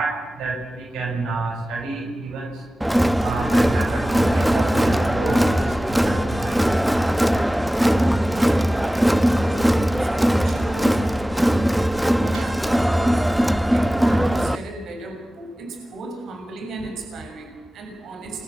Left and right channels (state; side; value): normal; both; correlation 0.97